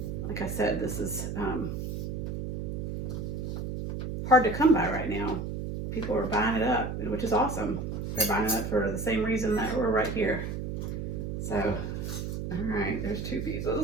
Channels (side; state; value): right; noise; hum, 4 dB below the sound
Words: Like I said, this is hard to come by right now. People are buying it up, which is awesome. They're buying it up for the same reason that we're right here. So, all right, there's 2